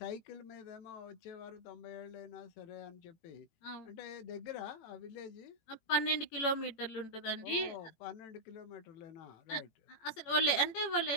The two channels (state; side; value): late; right; 18 ms